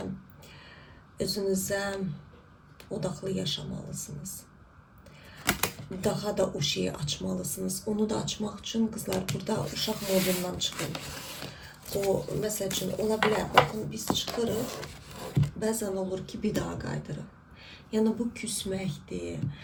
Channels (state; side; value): identical; both; correlation 1.00